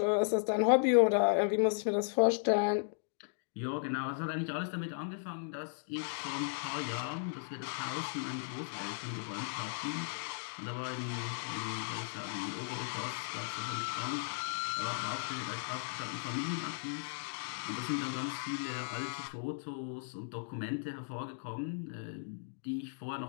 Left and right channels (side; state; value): right; silent; digital silence